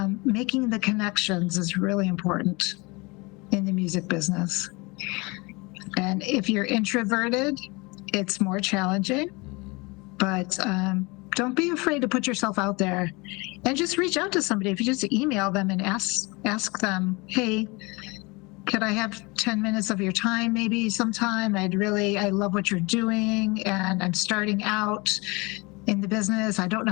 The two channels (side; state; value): right; quieter; 26.1 dB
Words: Making the connections is really important in the music business. And if you're introverted, it's more challenging, but don't be afraid to put yourself out there and just reach out to somebody. If you just email them and ask them, hey, could I have 10 minutes of your time maybe sometime? I love what you're doing, and I'm starting out in the business. I don't know